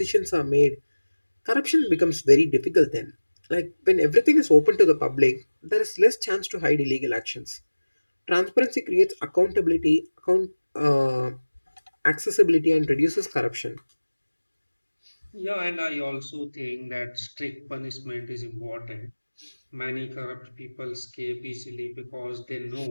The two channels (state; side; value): inverted; both; correlation -1.00